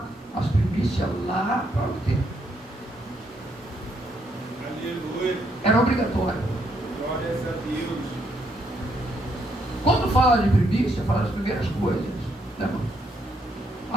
as primícias lá para o templo. Aleluia. Era obrigatório. Glória a Deus. Quando fala de primícia, fala das primeiras coisas. Né?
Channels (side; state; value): both; normal; correlation 0.74